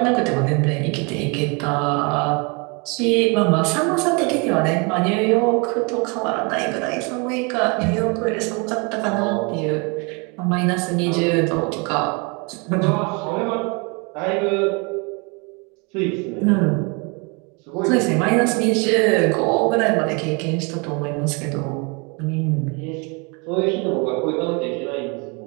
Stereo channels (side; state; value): left; quieter; 31.4 dB